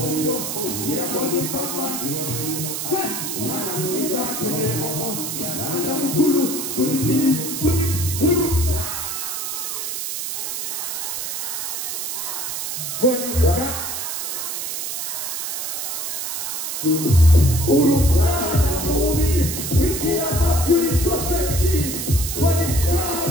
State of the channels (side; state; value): right; noise; hiss, 4 dB below the sound